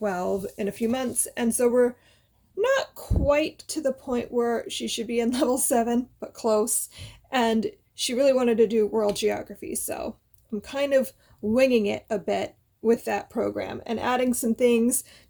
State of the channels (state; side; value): identical; both; correlation 1.00